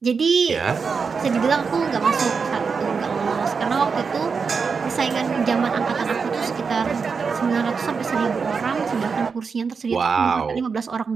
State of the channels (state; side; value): quieter; left; 5.4 dB